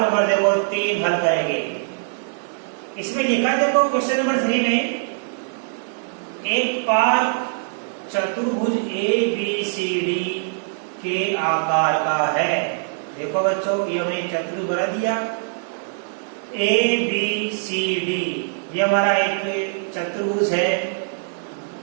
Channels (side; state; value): left; silent; digital silence